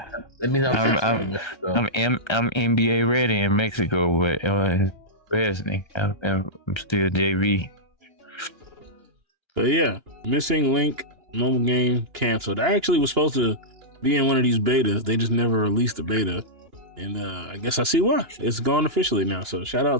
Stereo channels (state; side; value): late; left; 2.9 ms